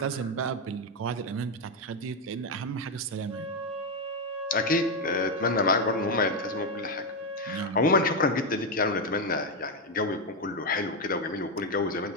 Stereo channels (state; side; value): normal; both; correlation 0.06